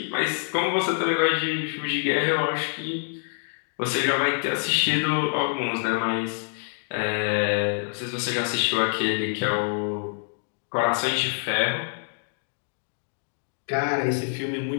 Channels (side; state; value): right; silent; digital silence